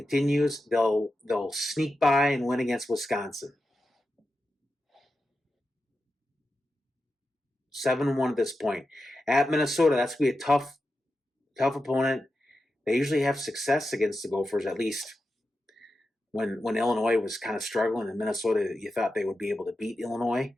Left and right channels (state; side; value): normal; both; correlation 0.90